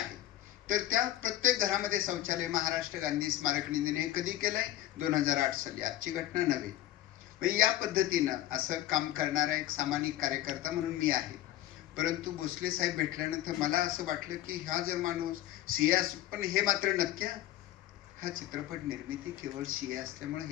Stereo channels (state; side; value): quieter; right; 14.0 dB